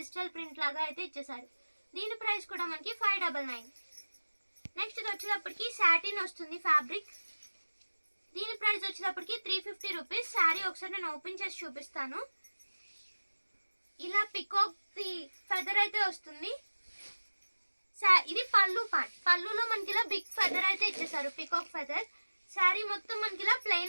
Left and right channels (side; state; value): both; inverted; correlation -1.00